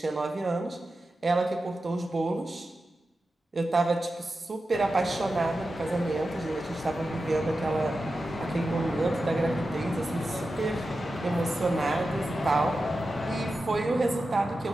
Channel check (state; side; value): normal; both; correlation 0.92